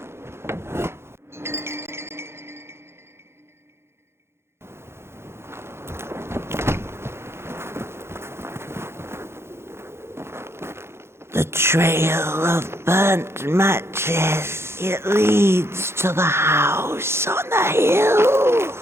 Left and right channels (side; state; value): left; late; 0.12 ms